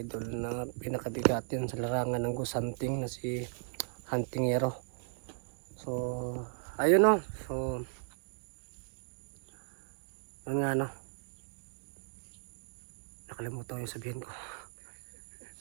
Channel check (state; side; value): silent; left; digital silence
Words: idol na pinakabigat yun sa larangan ng ghost hunting na si Hunting Hero. So ayun, no. So yun nga, no. Nakalimutan yung sabihin ko.